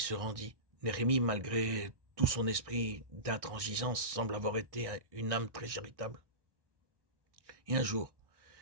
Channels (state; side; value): late; left; 1.6 ms